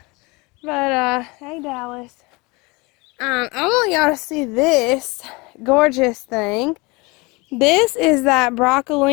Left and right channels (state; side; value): quieter; right; 25.9 dB